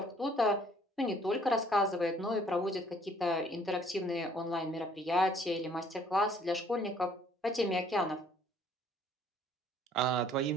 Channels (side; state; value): both; normal; correlation 0.60